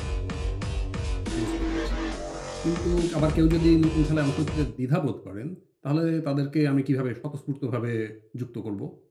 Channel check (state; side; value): identical; both; correlation 1.00